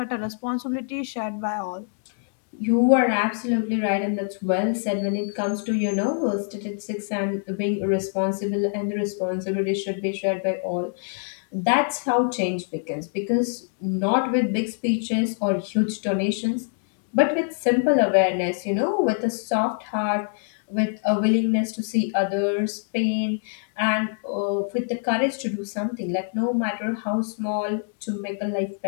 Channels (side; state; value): right; silent; 62 dB below the other